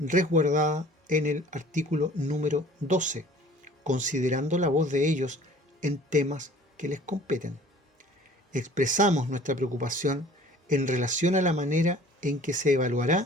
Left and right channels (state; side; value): normal; both; correlation 0.49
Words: en el artículo número 12, considerando la voz de ellos en temas que les competen. Expresamos nuestra preocupación en relación a la manera en que se